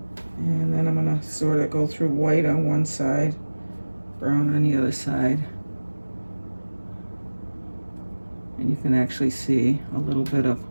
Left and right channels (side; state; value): both; inverted; correlation -1.00